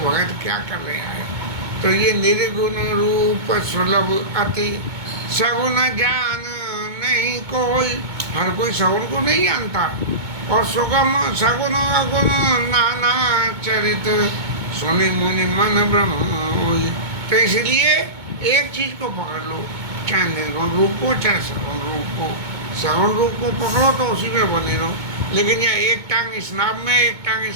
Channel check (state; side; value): late; left; 2.2 ms